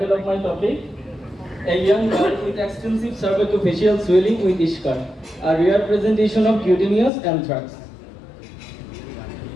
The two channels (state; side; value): drops out; right; at 7.1 s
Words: of my topic: A young girl with extensive cervicofacial swelling with Ishkar, a rare presentation of cutaneous anthrax.